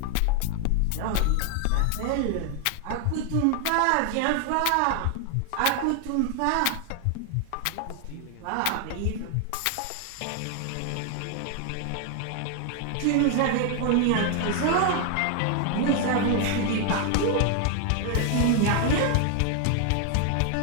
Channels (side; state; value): both; different; correlation 0.00